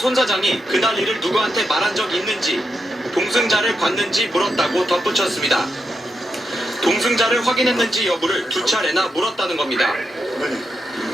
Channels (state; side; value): normal; both; correlation 0.85